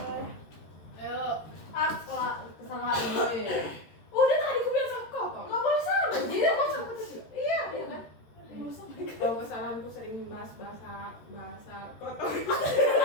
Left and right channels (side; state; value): right; late; 13 ms